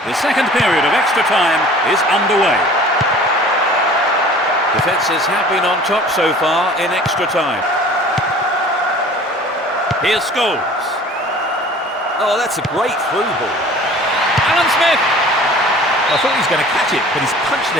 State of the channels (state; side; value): normal; both; correlation 0.46